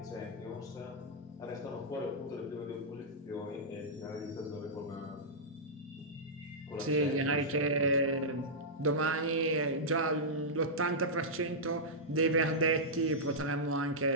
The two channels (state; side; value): normal; both; correlation -0.11